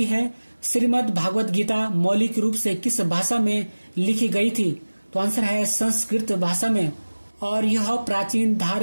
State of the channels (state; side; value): inverted; both; correlation -1.00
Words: है, श्रीमद् भागवत गीता मौलिक रूप से किस भाषा में लिखी गई थी? तो आंसर है संस्कृत भाषा में और यह प्राचीन